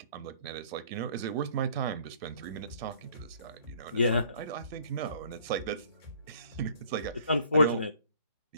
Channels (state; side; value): inverted; both; correlation -0.57